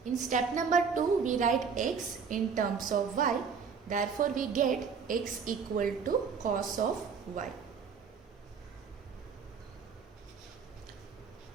In step number 2, we write x in terms of y, therefore we get x equal to cos of y.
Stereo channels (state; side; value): quieter; left; 6.0 dB